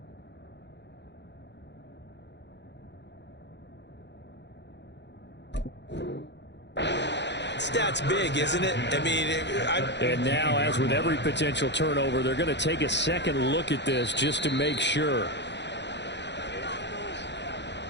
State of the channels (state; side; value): late; right; 0.51 ms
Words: Stat's big, isn't it? I mean, and now, as with every potential turnover, they're going to take a second look at this just to make sure.